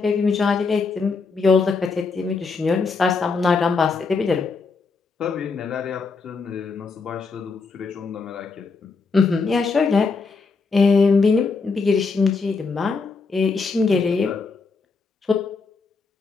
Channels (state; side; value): quieter; right; 4.5 dB